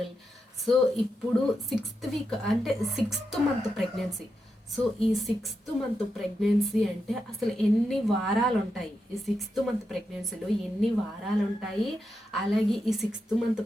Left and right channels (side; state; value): both; normal; correlation 0.86